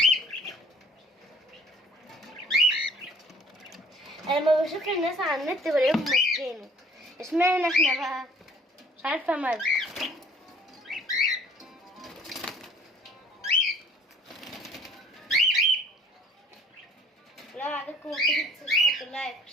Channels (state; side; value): normal; both; correlation 0.53